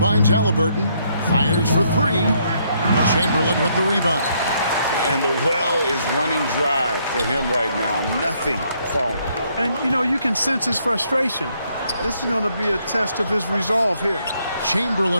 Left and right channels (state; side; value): inverted; both; correlation -0.71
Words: Halliburton. Fires for 3. Chamberlain with the rebound. And the well is running dry for him right now. Nothing falling. And, you know, you can sense his frustration. This is going to be a test of his resolve here.